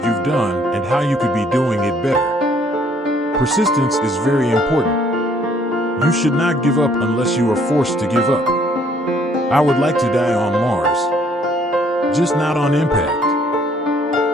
you've done and how you could be doing it better. Persistence is very important. You should not give up unless you are forced to give up. I would like to die on Mars, just not on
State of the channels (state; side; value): normal; both; correlation 0.63